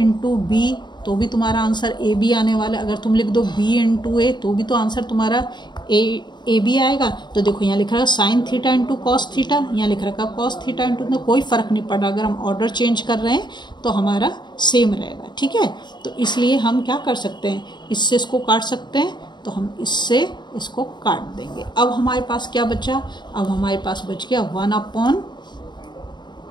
बी, तो भी तुम्हारा आंसर ए बी आने वाला है। अगर तुम लिख दो b इंटू ए, तो भी तो आंसर तुम्हारा ए बी आएगा। तो देखो यहाँ लिख रहा है sine theta into cos theta, यहाँ लिख रखा है कॉस थीटा इंटू, तो कोई फ़र्क नहीं पड़ रहा। अगर हम ऑर्डर चेंज कर रहे हैं तो हमारा सेम रहेगा, ठीक है। तो इसलिए हम क्या कर सकते हैं, इससे इसको काट सकते हैं, तो हम इससे इसको काट देंगे। अब हमारे पास क्या बचा, अब हमारे पास बच गया 1 अपॉन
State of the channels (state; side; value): late; right; 0.21 ms